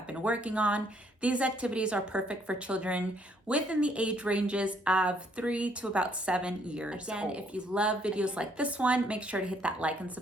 been working on. These activities are perfect for children within the age ranges of 3 to about 7 years old. Again, if you love videos like this one, make sure to hit that like and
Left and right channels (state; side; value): normal; both; correlation 0.67